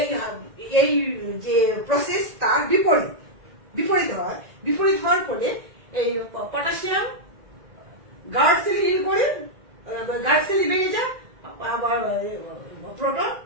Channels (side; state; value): left; late; 1.9 ms